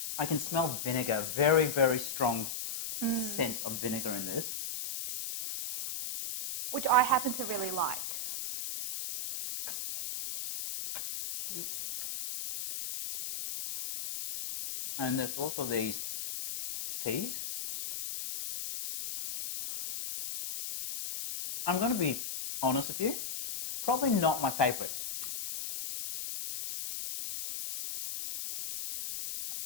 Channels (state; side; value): noise; left; hiss, 5 dB below the sound